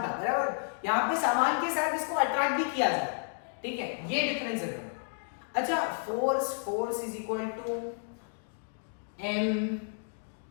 था, बराबर। यहाँ पे सामान के साथ इसको अट्रैक्ट भी किया जाए। ठीक है, ये डिफरेंस है। अच्छा, force is equal to m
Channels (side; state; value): right; silent; digital silence